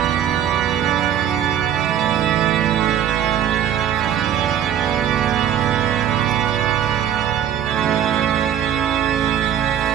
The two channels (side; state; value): left; quieter; 9.8 dB